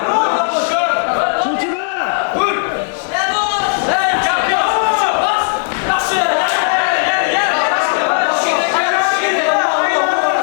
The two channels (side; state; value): right; silent; digital silence